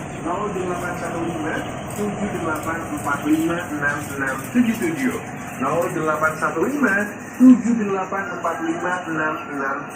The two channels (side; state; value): both; identical; correlation 1.00